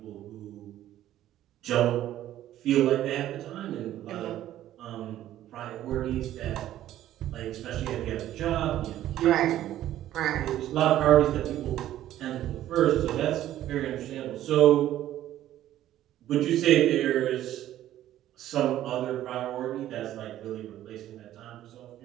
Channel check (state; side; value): quieter; left; 12.9 dB